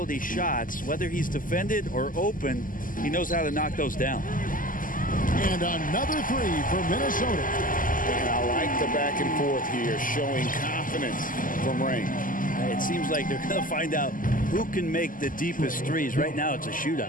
shots. Whether he's defended or open, he knows how to knock those down. And another three for Minnesota. And I like the back and forth here, showing confidence from Rain. It seems like they're going to find out who can make the deepest threes. Right now, it's a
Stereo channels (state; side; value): late; right; 0.39 ms